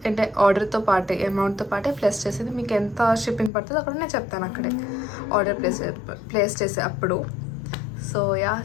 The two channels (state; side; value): drops out; right; at 3.5 s